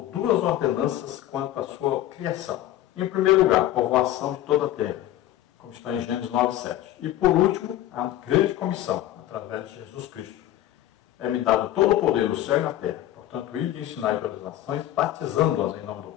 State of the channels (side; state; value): right; quieter; 13.5 dB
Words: duas ordenanças quanto à sua criação. Em primeiro lugar, povoação de toda a terra, como está em Gênesis 9:7. E por último, a grande comissão, através de Jesus Cristo. É-me dado todo o poder do céu e na terra. Portanto, ir de ensinar todas as nações, batizando-as em nome do